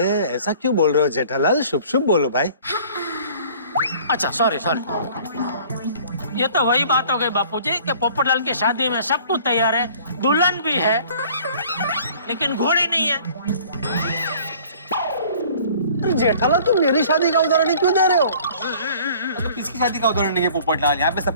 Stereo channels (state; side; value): inverted; both; correlation -0.51